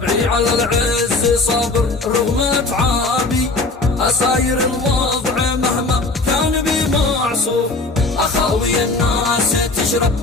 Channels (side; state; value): right; quieter; 3.4 dB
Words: على العز صابر رغم اتعابي، اساير الوضع مهما كان بي معصوف، اخاوي الناس تشرب